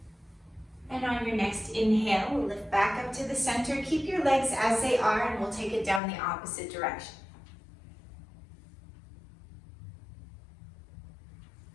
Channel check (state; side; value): drops out; right; at 6.0 s